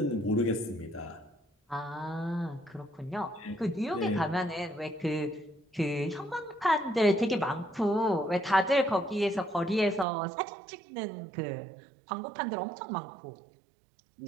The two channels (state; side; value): drops out; left; at 10.1 s